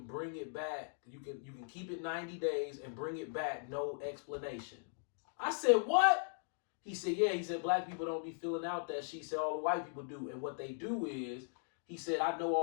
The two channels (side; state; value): right; silent; digital silence